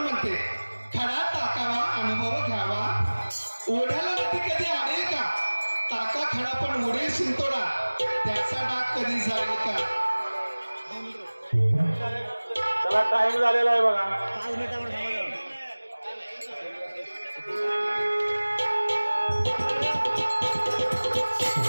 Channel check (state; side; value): inverted; both; correlation -1.00